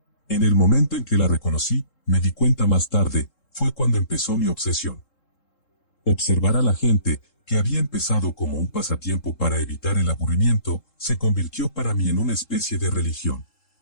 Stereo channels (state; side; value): late; right; 3.7 ms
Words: En el momento en que la reconocí, me di cuenta más tarde, fue cuando empezó mi obsesión. Observar a la gente, que había empezado como un pasatiempo para evitar el aburrimiento, se convirtió para mí en una especie de religión.